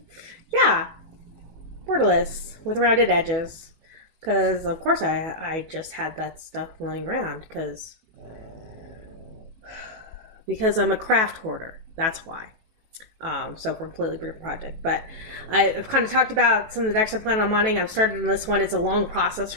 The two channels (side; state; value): left; late; 18 ms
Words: yeah, borderless with rounded edges. Because of course I just had that stuff lying around because I'm a craft hoarder. That's why. So for a completely different project. But I've kind of talked about some of the decks I plan on modding. I've started on this one. It's a long process